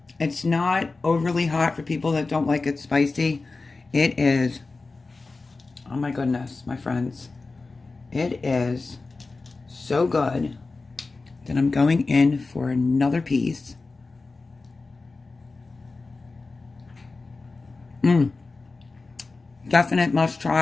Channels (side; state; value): right; quieter; 3.7 dB